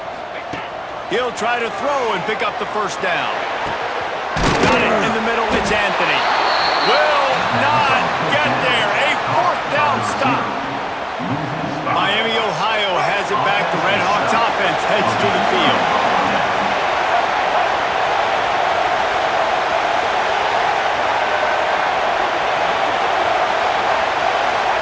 He'll try to throw and pick up the first down. Got it in the middle. It's Anthony. Will not get there. A fourth down stop. Miami, Ohio has it back. The Red Hawks offense heads to the field.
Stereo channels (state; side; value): identical; both; correlation 1.00